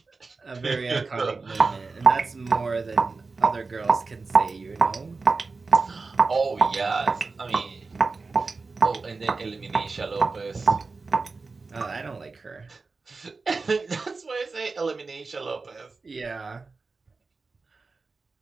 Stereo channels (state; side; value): quieter; left; 4.1 dB